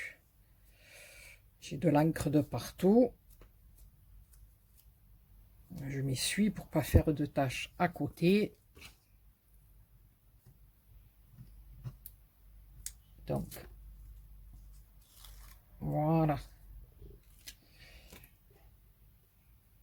J'ai de l'encre de partout. Je m'essuie pour pas faire de taches à côté. Donc, voilà.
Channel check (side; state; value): both; identical; correlation 1.00